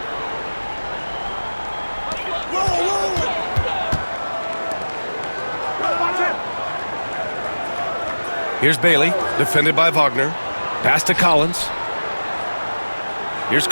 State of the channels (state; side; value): inverted; both; correlation -1.00